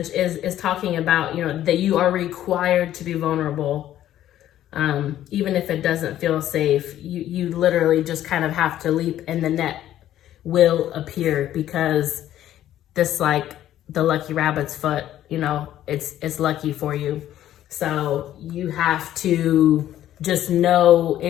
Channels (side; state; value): right; quieter; 12.4 dB